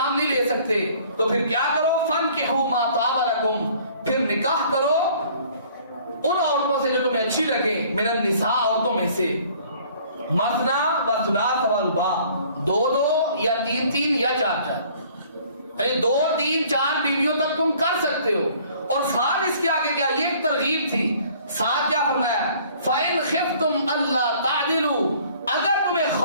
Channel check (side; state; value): both; inverted; correlation -0.55